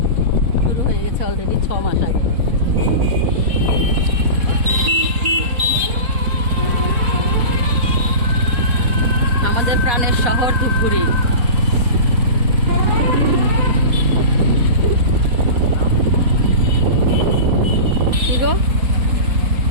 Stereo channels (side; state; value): left; late; 4.1 ms